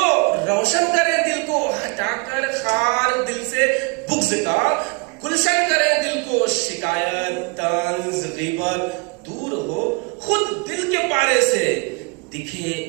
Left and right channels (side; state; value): left; quieter; 31.1 dB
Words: रोशन करें दिल को, हटाकर खार दिल से बुग़्ज़ का गुलशन करें दिल को, शिकायत तंज ग़ीबत दूर हो खुद दिल के पारे से, दिखे